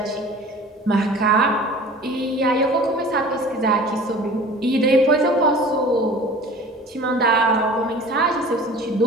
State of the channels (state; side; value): normal; both; correlation 0.43